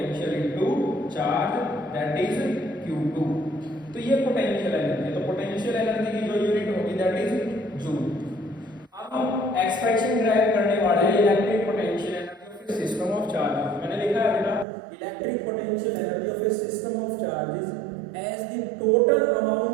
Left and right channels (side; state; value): left; drops out; at 14.7 s